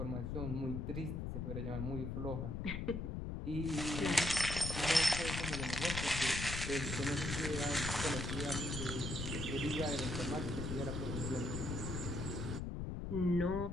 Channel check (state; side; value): noise; left; rumble, 3 dB below the sound